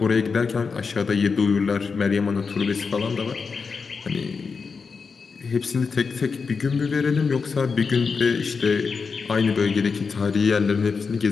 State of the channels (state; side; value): quieter; right; 5.1 dB